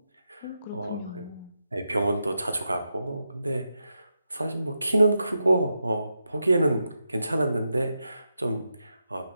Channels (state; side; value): inverted; both; correlation -0.87